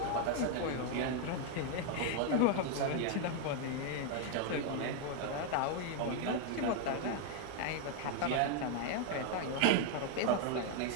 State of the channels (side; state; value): both; different; correlation 0.01